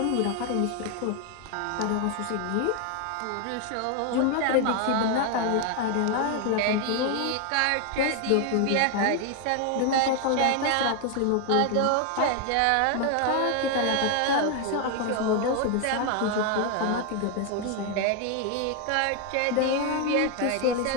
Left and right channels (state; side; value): different; both; correlation 0.01